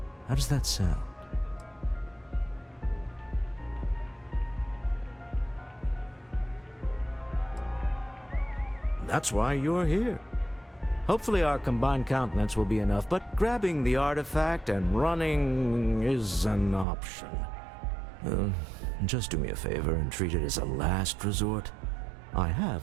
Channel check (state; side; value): drops out; left; at 16.9 s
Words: How does that sound? That's why you're here. Hopefully our combined countenance will be enough, but grabbing the artifact and running is an option. Just do me a favor and treat it as a last resort. I